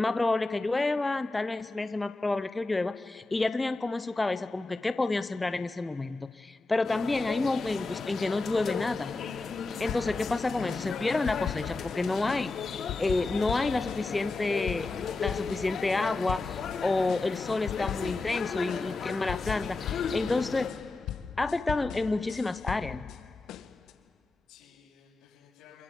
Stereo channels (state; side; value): quieter; right; 3.3 dB